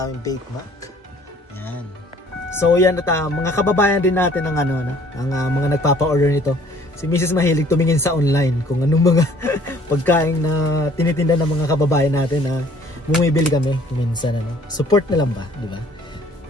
baked mac. Yan. So yan at mga kababayan din natin ng ang mga nagpapa-order nito. Si Mrs. mahilig tumingin sa online kung anong mga pagkain na tinitinda ng mga kababayan natin na bumibili kami minsan Support na lang ba, di ba?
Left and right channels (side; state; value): both; normal; correlation 0.57